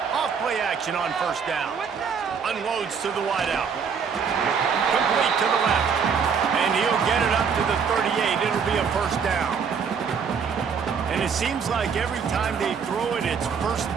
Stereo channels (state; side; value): quieter; left; 6.3 dB